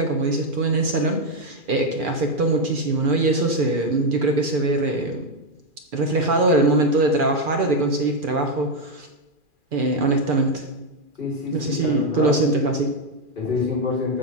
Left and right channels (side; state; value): left; late; 2.4 ms